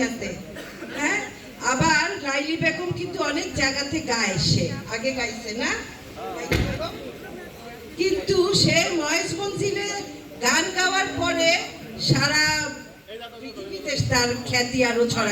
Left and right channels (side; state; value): both; identical; correlation 1.00